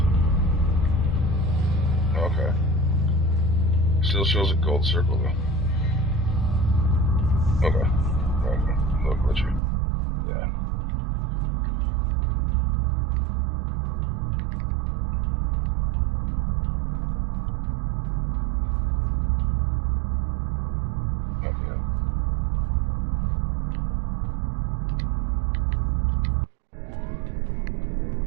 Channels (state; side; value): drops out; left; at 9.6 s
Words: Okay. Still shows a gold circle though. Okay. Okay. No glitchy. Yeah. Okay.